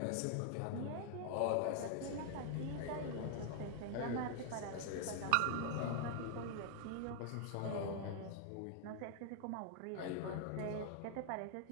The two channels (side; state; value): both; different; correlation 0.00